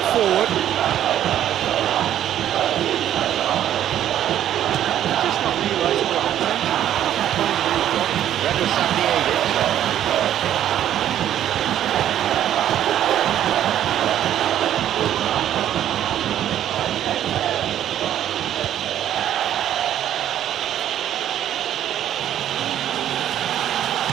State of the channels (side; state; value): left; quieter; 11.1 dB